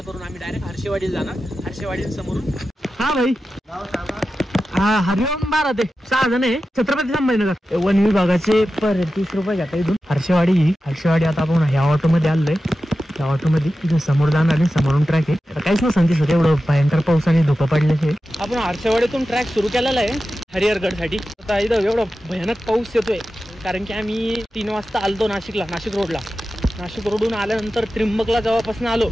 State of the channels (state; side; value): normal; both; correlation 0.93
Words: करून आम्ही डायरेक्ट हर्षवाडीला जाणार. हर्षवाडी समोरून. हा भाई हा हरिओम 12 ते 6 जण आहे. छत्रपती संभाजीनगर वन विभागाचे पर 30 रुपये घेता इथून. हर्षवाडी आता आपण ह्या ऑटो मध्ये आलोय. त्या ऑटो मध्ये इथून समोर जाणार आणि समोरून ट्रॅक आहे. काहीच ना संदेश होते एवढं भयंकर पाऊस आणि धुकं पडल्याचे. आपण हर्षवाडीतून ट्रॅक सुरू केलेला आहे हरिहरगडसाठी. आता इथं एवढा भयानक पाऊस येतोय कारण की आम्ही 3 वाजता आलतो नाशिकला. नाशिक रोडला. नाशिक रोडून आल्यानंतर त्र्यंबकला जेव्हापासून आलो